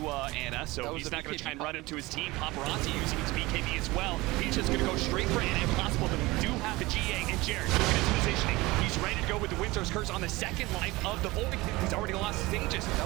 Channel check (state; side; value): quieter; left; 21.0 dB